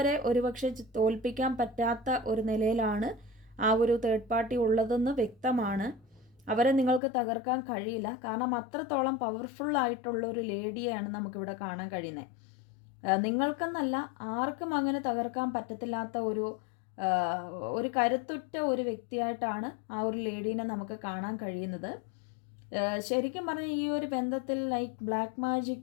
ഒരുപക്ഷെ തോൽപ്പിക്കാൻ പറ്റാത്ത ഒരു നിലയിലാണ് ആ ഒരു തേർഡ് പാർട്ടി ഉള്ളതെന്ന് വ്യക്തമാണ്. അവരെ നിങ്ങൾക്ക് തകർക്കാൻ കഴിയില്ല. കാരണം അത്രത്തോളം പവർഫുൾ ആയിട്ടുള്ള ഒരു ലേഡിയെയാണ് നമുക്കിവിടെ കാണാൻ കഴിയുന്നത്. നിങ്ങൾക്കെന്നല്ല, ആർക്കും അങ്ങനെ തകർക്കാൻ പറ്റത്തില്ലാത്ത ഒരു കരുത്തുറ്റ ഒരു വ്യക്തിയായിട്ടാണ് ആ ഒരു ലേഡീനെ നമുക്ക് കാണാൻ കഴിയുന്നത്. ശരിക്കും പറഞ്ഞാൽ ഈ ഒരു ബന്ധത്തിൽ ലൈക്ക് ബ്ലാക്ക്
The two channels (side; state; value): right; drops out; at 7.0 s